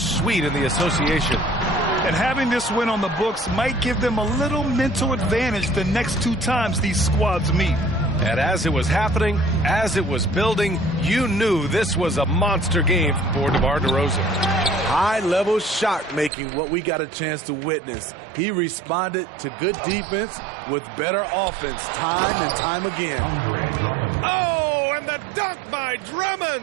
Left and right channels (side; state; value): left; drops out; at 16.3 s